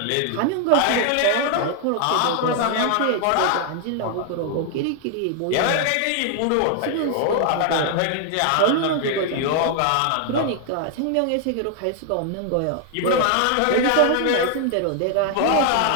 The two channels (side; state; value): both; different; correlation 0.00